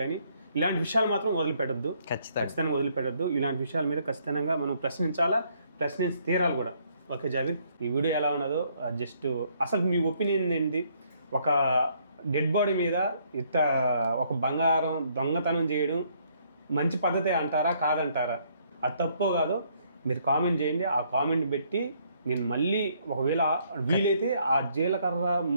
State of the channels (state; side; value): inverted; both; correlation -0.68